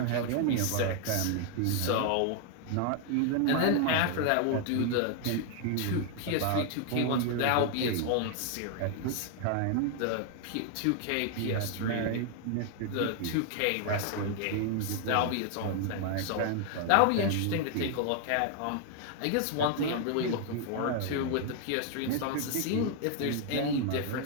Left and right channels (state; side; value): different; both; correlation 0.00